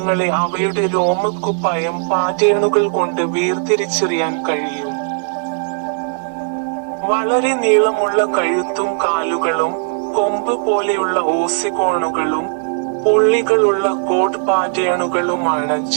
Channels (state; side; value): silent; left; digital silence